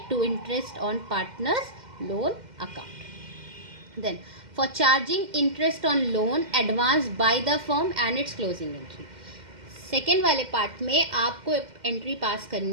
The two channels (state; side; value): late; left; 2.1 ms